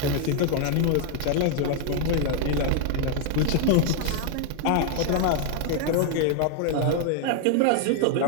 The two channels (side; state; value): both; different; correlation 0.00